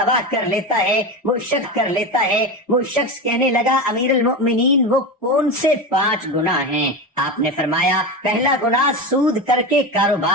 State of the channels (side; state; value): both; normal; correlation 0.21